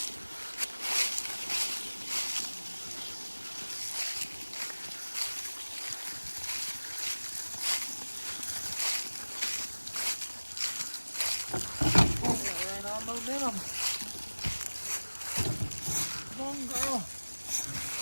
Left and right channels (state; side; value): inverted; both; correlation -1.00